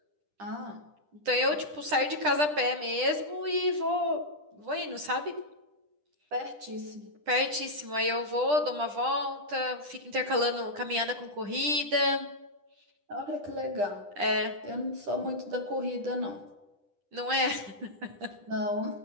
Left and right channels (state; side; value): late; left; 10 ms